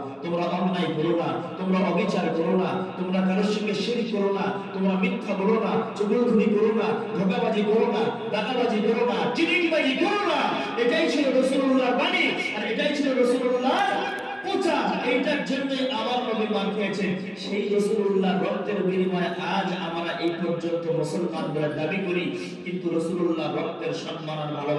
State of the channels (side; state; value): both; identical; correlation 1.00